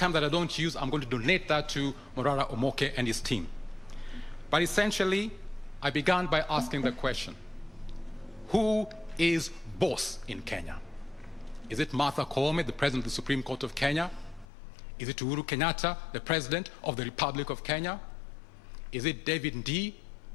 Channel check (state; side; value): drops out; right; at 14.5 s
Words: that I don't use, I'm going to donate that to Morara Omoke and his team. But essentially, I began by asking the question, who is boss in Kenya? Is it Martha Koome, the President of the Supreme Court of Kenya? Is it Uhuru Kenyatta, the President of the Republic of Kenya? Is it David Ndii,